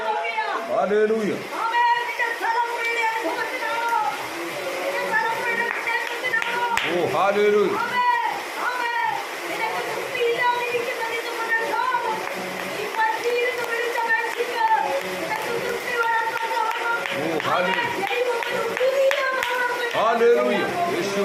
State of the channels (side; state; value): both; identical; correlation 1.00